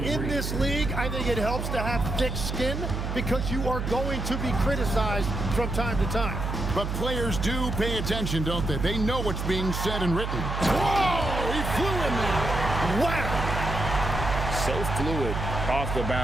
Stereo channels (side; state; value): right; noise; hum, 3 dB below the sound